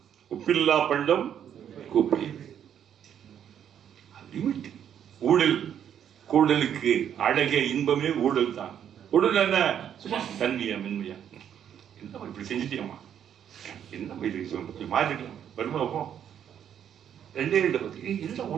உப்பில்லா பண்டம் குப்பை. லிமிட். ஊழல் கூடலுக்கு அழகே இன்பமே ஊழல் தான். ஊழல் என்ன சும்மா தன்மையா மென்மையா என்ன இப்படி செஞ்சுட்டியம்மா என்ன இது மாறிக்கலாம் வருமா போ 2 பத்தி என்ன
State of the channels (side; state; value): left; quieter; 9.3 dB